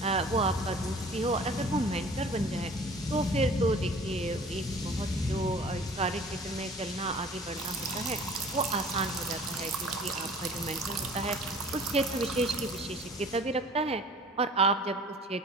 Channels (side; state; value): both; normal; correlation 0.47